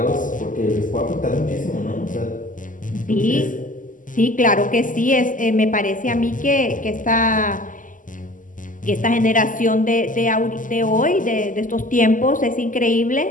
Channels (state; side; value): late; right; 0.38 ms